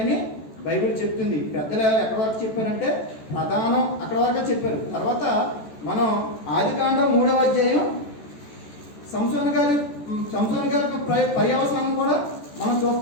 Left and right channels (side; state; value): right; late; 14 ms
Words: బైబిల్ చెప్తుంది. పెద్దలు ఎక్కడి వరకు చెప్పారంటే ప్రధానం అక్కడ వరకు చెప్పారు. తర్వాత మనం ఆదికాండం 3వ అధ్యాయం సంసోను గారి పర్యవసానం కూడా మనం